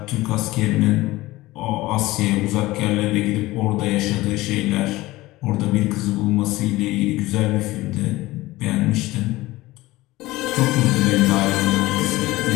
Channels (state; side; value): quieter; right; 18.7 dB